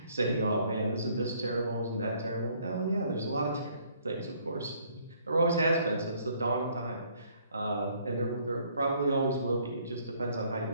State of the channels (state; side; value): inverted; both; correlation -0.63